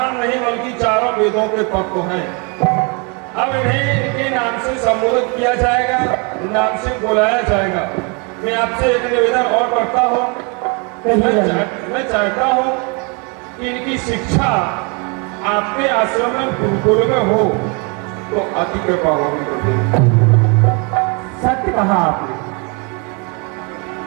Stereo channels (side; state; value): left; quieter; 32.9 dB